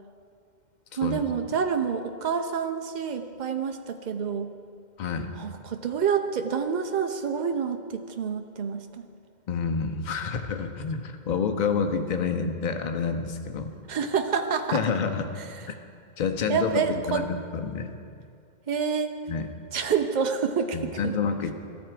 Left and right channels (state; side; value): late; right; 2.1 ms